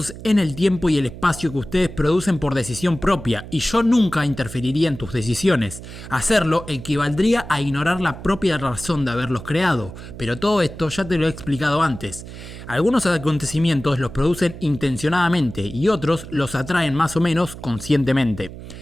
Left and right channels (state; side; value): noise; right; hum, 13 dB below the sound